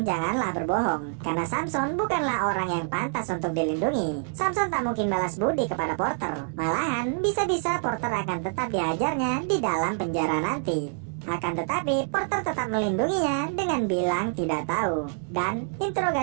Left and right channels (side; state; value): left; silent; 61 dB below the other